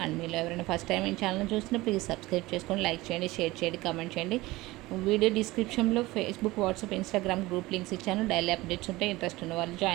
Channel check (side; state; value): left; quieter; 19.7 dB